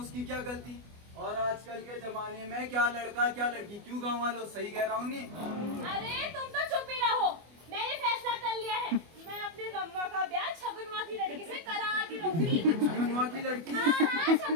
क्या गलती? और आजकल के जमाने में क्या लड़का क्या लड़की, क्यों गाँव वालों? सही कह रहा हूँ नहीं? अरे तुम तो चुप ही रहो। मैंने फैसला कर लिया है, मैं अपने रम्मा का ब्याह छगुनवा की लड़की से करा के रहूंगी। छगुनवा की लड़की? हाँ,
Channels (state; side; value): late; left; 24 ms